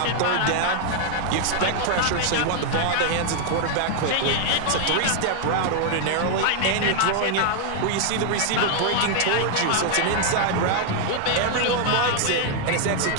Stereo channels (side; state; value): both; different; correlation 0.00